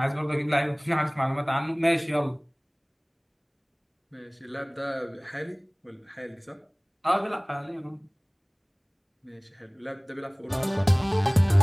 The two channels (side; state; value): both; identical; correlation 1.00